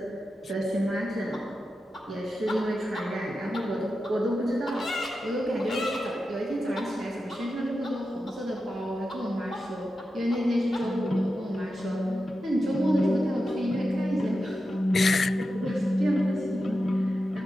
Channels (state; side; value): normal; both; correlation 0.90